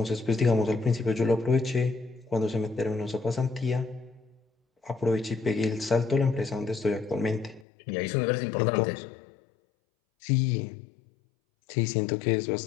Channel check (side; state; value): right; drops out; at 7.7 s